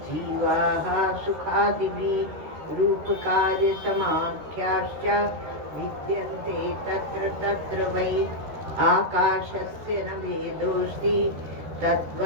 सुखादिभिः रूपकार्यसमाख्याश्च विद्यन्ते तत्र तत्र वै आकाशस्य न भेदोऽस्ति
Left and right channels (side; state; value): left; late; 13 ms